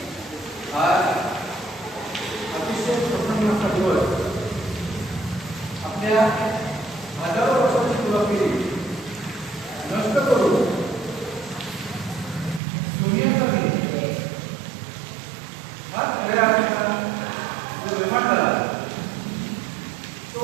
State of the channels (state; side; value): drops out; left; at 12.6 s